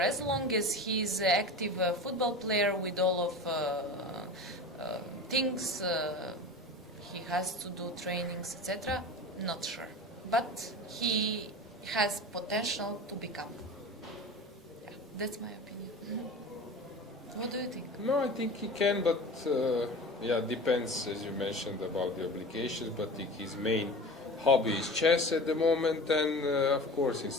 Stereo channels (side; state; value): both; normal; correlation 0.33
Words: long as he's an active football player with all of things he has to do, trainings, etc., not sure. But he has potential to become. Yeah, that's my opinion. What do you think? No, I think he can, but depends, as you mentioned, about the obligations. But his main hobby is chess at the moment, and of course,